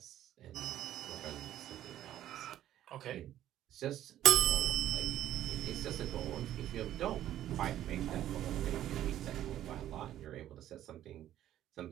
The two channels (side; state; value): left; quieter; 12.3 dB